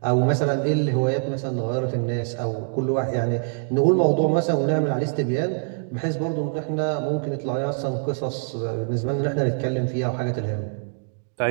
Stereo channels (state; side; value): silent; left; digital silence